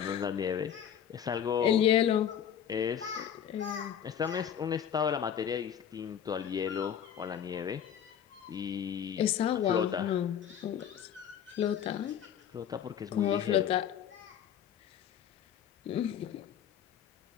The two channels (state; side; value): quieter; right; 9.0 dB